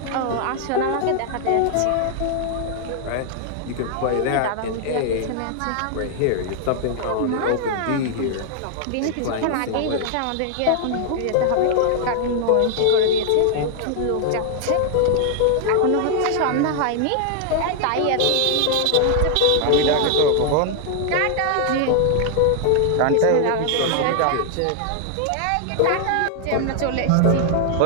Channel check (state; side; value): different; both; correlation 0.00